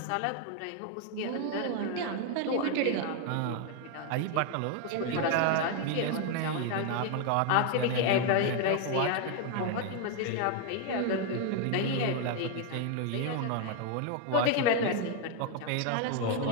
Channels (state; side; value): different; both; correlation 0.01